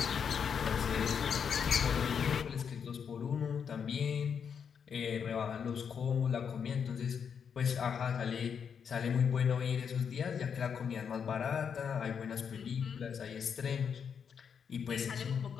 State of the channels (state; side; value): quieter; right; 7.1 dB